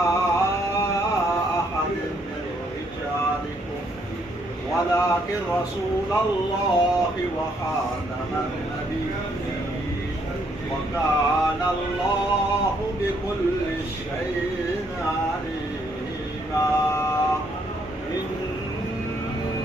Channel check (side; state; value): both; normal; correlation 0.71